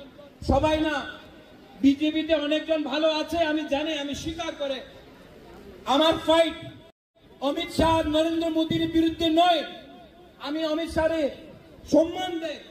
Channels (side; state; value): both; identical; correlation 1.00